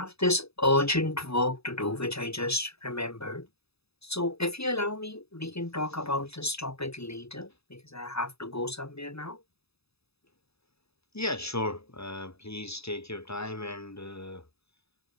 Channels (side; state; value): right; late; 0.78 ms